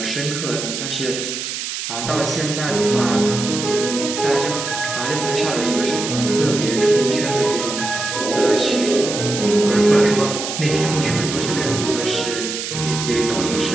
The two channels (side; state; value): right; noise; hiss, 5 dB below the sound